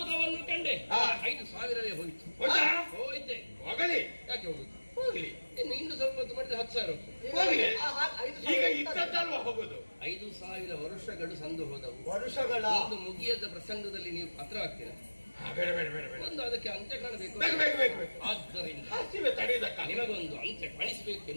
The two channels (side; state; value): both; inverted; correlation -1.00